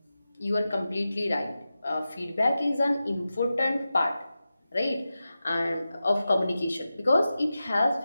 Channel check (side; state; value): both; inverted; correlation -0.93